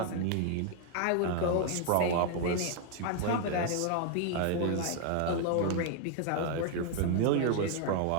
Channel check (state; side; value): different; both; correlation 0.00